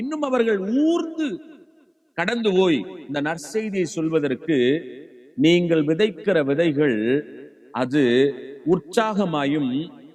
இன்னும் அவர்கள் ஊர்ந்து கடந்து போய் இந்த நற்செய்தியை சொல்வதற்கு நீங்கள் விதைக்கிற விதைகள் அது உற்சாகமாயும்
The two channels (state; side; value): identical; both; correlation 1.00